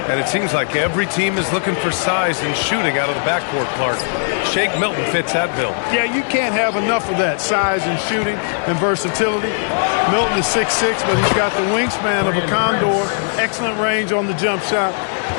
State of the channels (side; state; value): right; silent; digital silence